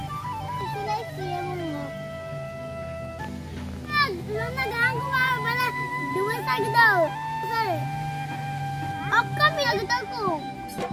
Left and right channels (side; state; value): both; identical; correlation 1.00